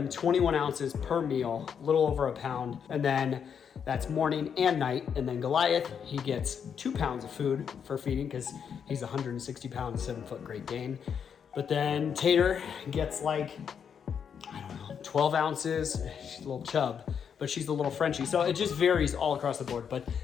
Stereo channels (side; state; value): right; quieter; 7.4 dB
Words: 21 ounces per meal, a little over a pound. And then that's morning and night. And then Goliath, he gets 2 pounds of food for feeding, because he's 160 pounds, 7-foot Great Dane. But then Tater gets like, I don't know 12 ounces. She's a little chub, but she's a little Frenchie. So it just varies all across the board, but